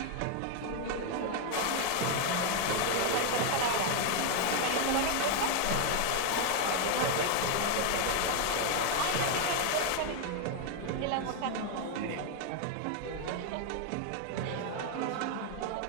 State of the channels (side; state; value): both; different; correlation 0.01